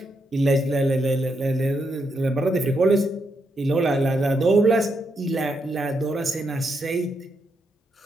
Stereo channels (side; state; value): both; normal; correlation 0.80